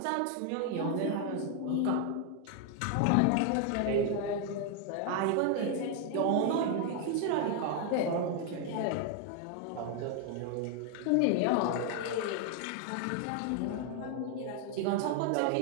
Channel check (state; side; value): different; both; correlation 0.01